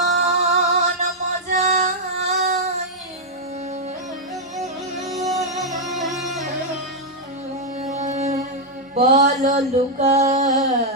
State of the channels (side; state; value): both; normal; correlation -0.04